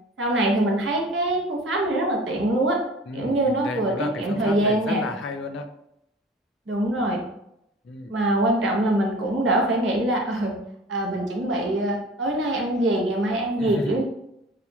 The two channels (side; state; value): both; normal; correlation 0.42